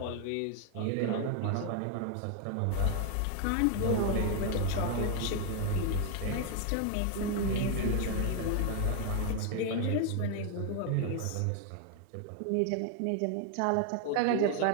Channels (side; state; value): both; different; correlation 0.01